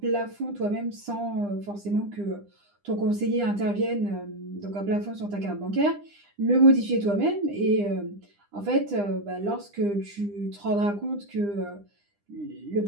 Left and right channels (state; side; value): late; left; 9.9 ms